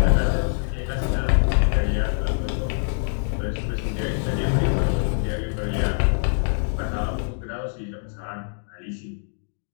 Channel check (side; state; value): right; silent; digital silence